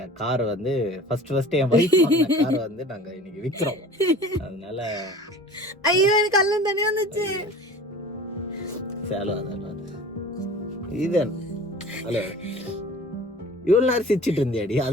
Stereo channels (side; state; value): both; normal; correlation 0.42